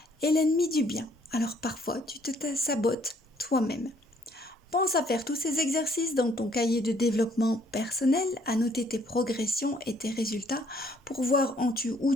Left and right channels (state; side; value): normal; both; correlation 0.64